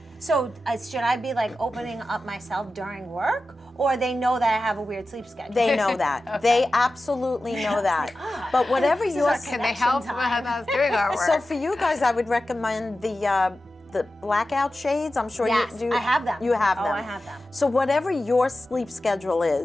So should I be opening up myself during work, or they know that I have a weird sleep schedule? They know that. Okay. They absolutely know that. But whatever your Can they help with us doing our work? So for you guys, I would recommend the blackout shades. I'm sure Yes, you do. I have them. You have Oh, them. I have them. So whatever your sleep schedule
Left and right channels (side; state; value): both; normal; correlation 0.93